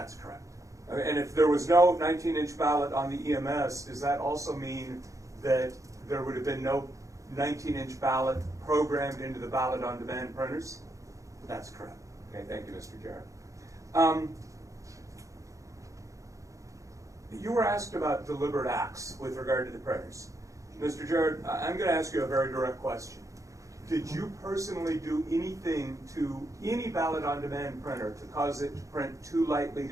correct. And if there was no 19-inch ballot on the EMS, does that also mean that there would have been no 19-inch ballot programmed into the ballot on demand printers? That's correct. Okay, thank you, Mr. Jarrett. You were asked about deliberate acts with regard to the printers. Mr. Jarrett, I'm going to ask you a very direct question. Did you personally do anything to any ballot-on-demand printer to cause it to print too lightly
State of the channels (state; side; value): late; left; 0.15 ms